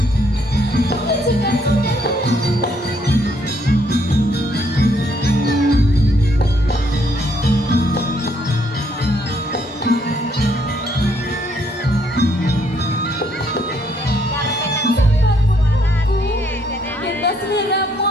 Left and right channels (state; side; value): normal; both; correlation 0.70